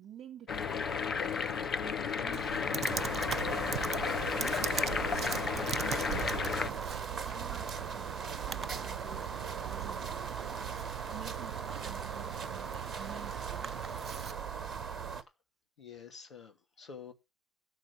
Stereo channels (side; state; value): both; normal; correlation 0.56